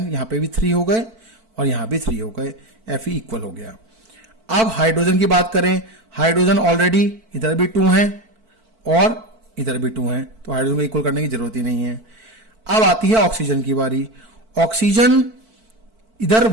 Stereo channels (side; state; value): left; late; 4.5 ms